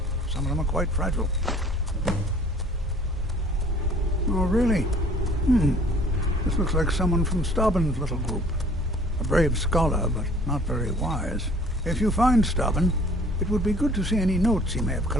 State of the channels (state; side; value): normal; both; correlation 0.53